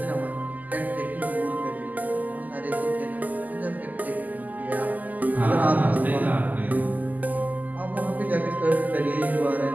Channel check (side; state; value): left; late; 0.081 ms